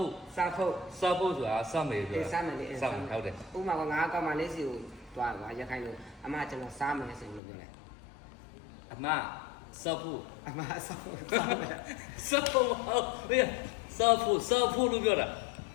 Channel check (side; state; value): right; drops out; at 7.4 s